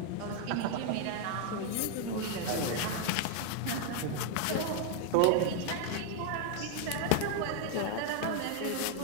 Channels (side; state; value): both; different; correlation 0.00